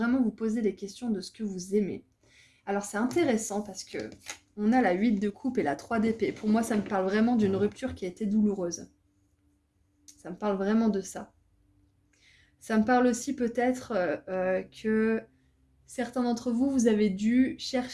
vous poser des questions de ce que vous aimez. Alors c'est intéressant parce que on a la 8 de coupe et la 3 d'épée. Pour moi, ça me parle vraiment d'une rupture qui a été douloureuse. Ça me parle vraiment de ça. Ça me parle aussi peut-être que certains d'entre vous, vous avez dû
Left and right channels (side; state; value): both; identical; correlation 1.00